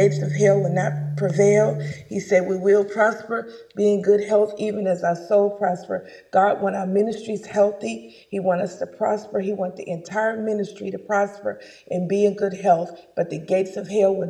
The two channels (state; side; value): identical; both; correlation 1.00